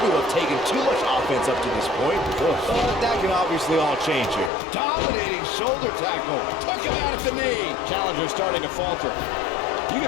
have taken too much offense up to this point. But that can obviously all change here. Dominating shoulder tackle. Took him out at the knee. Challenger's starting to falter. You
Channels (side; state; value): right; drops out; at 4.5 s